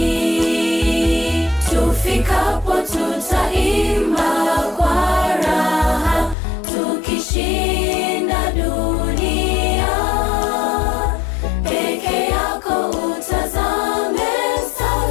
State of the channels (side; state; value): right; drops out; at 6.4 s